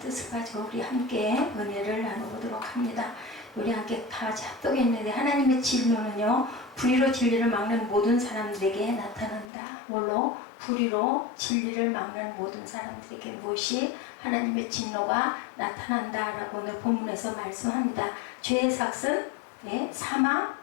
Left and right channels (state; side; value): drops out; right; at 9.5 s